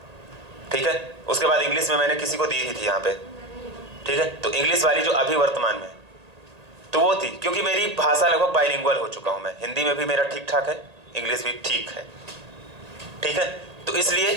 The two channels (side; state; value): left; late; 1.8 ms